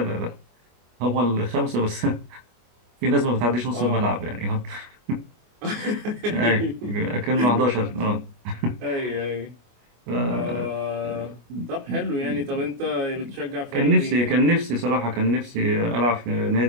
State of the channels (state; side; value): late; left; 24 ms